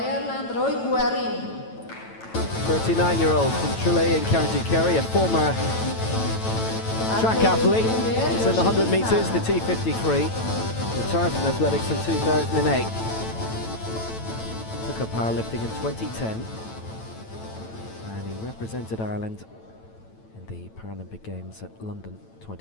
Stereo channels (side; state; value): right; late; 9.0 ms